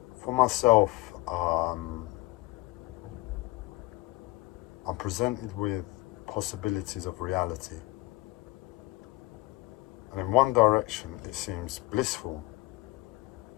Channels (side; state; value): right; quieter; 21.2 dB